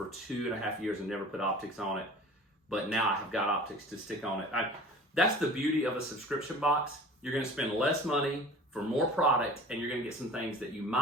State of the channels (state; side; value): normal; both; correlation 0.42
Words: 2.5 years and never put optics on it, but now I have got optics to stick on it. That's the beauty of a subscription box. You're going to spend less money for more product, and you're going to get some things that you